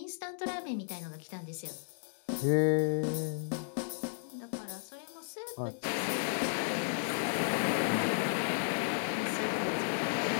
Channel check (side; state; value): right; silent; digital silence